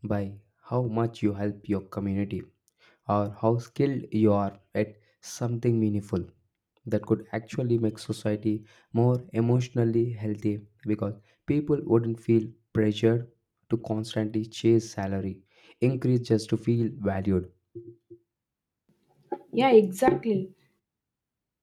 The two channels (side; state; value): both; identical; correlation 1.00